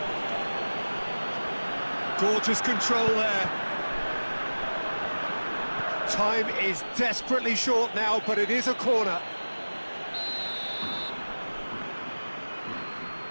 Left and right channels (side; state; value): both; inverted; correlation -1.00